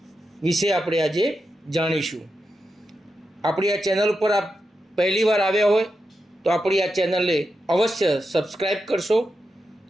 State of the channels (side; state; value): both; normal; correlation 0.88